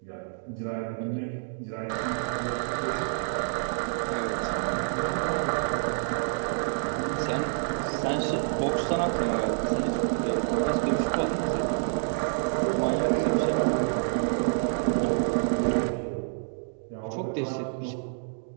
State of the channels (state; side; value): silent; left; digital silence